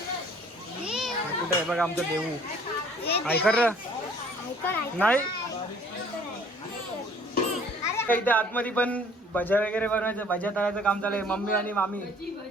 कुठे आहे बघा आमचं देऊ. ऐकर नाही इथे आतमध्ये पण भज्या वगैरे बनवायचं, भज्या तळायचं काम चालू आहे. मम्मी आणि मामी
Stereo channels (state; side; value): normal; both; correlation 0.55